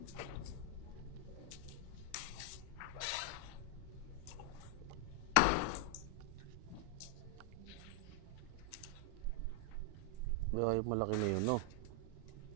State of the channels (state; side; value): different; both; correlation 0.00